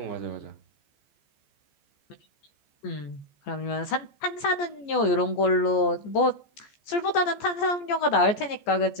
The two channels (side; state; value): right; late; 14 ms